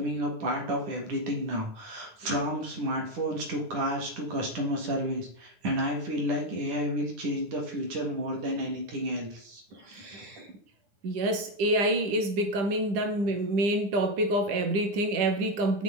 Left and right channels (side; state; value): left; late; 10 ms